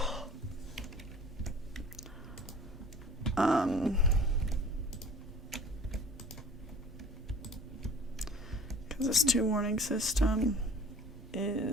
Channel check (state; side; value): normal; both; correlation 0.45